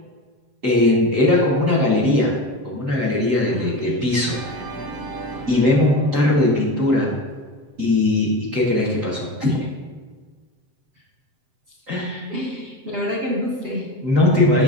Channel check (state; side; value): late; left; 7.8 ms